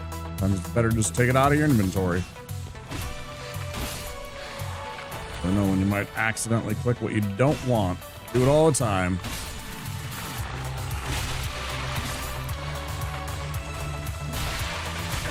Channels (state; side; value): identical; both; correlation 1.00